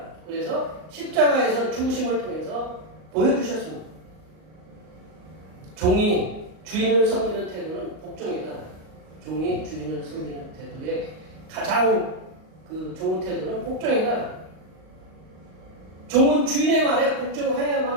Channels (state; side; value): late; left; 38 ms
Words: 그래서 십자가에서 죽으심을 통해서 보여주셨습니다. 종이 주인을 섬기는 태도는 복종이다. 종이 주인을 섬기는 태도의 가장 좋은 태도는 복종이다. 종은 주인의 말에